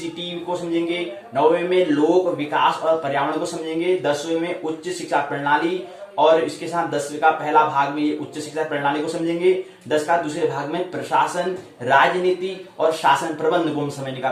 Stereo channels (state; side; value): identical; both; correlation 1.00